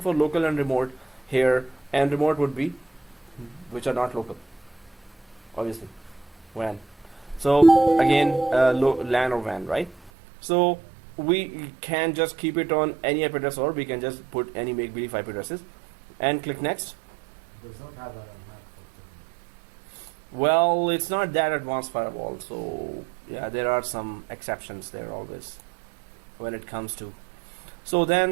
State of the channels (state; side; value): drops out; left; at 10.1 s